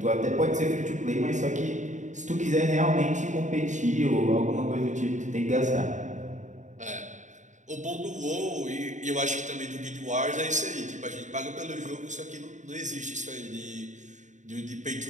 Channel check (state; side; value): late; left; 0.35 ms